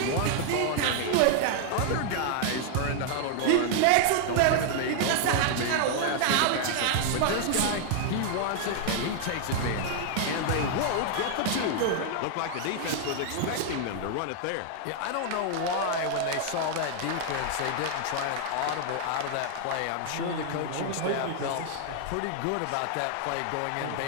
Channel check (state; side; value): different; both; correlation 0.00